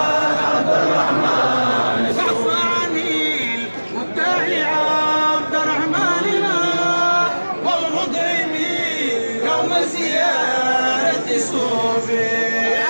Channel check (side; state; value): both; inverted; correlation -1.00